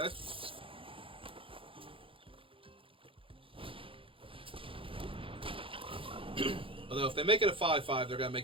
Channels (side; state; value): left; late; 0.26 ms